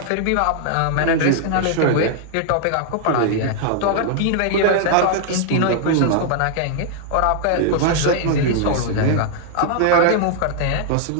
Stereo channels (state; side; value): different; both; correlation -0.01